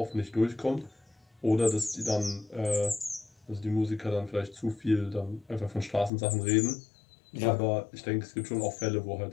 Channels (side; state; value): right; drops out; at 6.1 s